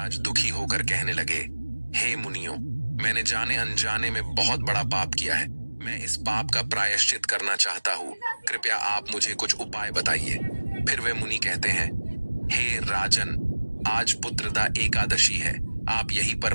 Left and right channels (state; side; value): inverted; both; correlation -1.00